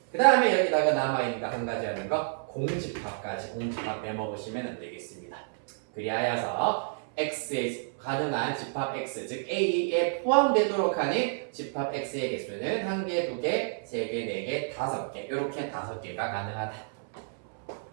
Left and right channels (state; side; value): silent; left; 58 dB below the other